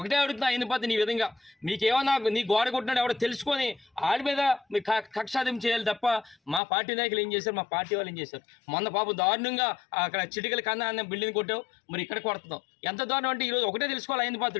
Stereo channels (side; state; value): right; drops out; at 6.6 s